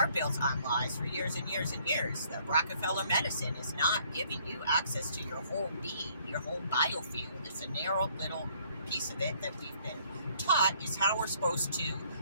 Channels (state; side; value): inverted; both; correlation -0.63